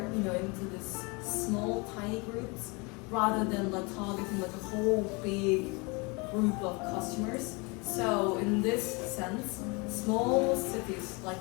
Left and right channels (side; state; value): right; quieter; 29.1 dB